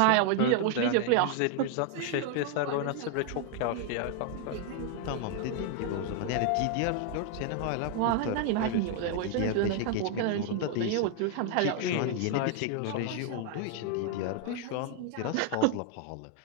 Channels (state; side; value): different; both; correlation 0.00